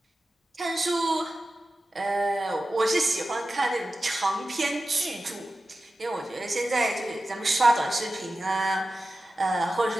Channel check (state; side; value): normal; both; correlation 0.94